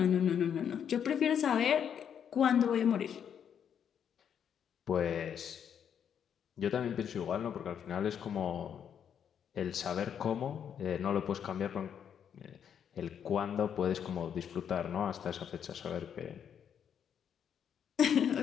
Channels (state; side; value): quieter; right; 8.3 dB